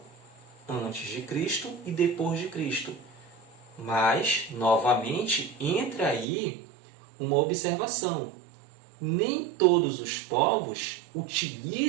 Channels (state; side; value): drops out; left; at 6.2 s